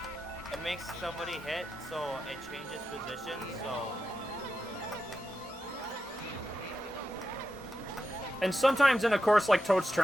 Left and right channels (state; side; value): normal; both; correlation 0.89